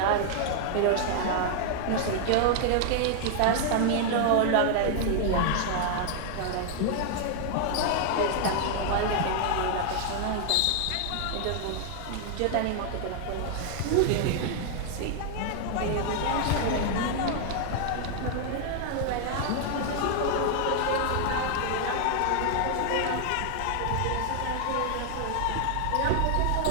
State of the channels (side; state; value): both; different; correlation 0.00